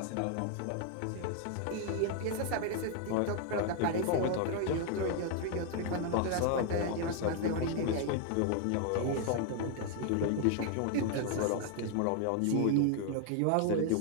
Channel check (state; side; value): different; both; correlation 0.00